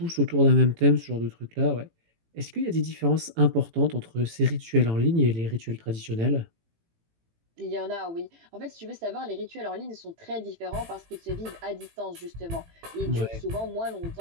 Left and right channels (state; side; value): late; left; 18 ms